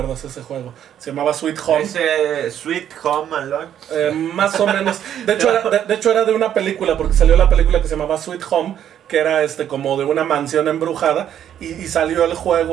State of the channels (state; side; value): quieter; left; 10.1 dB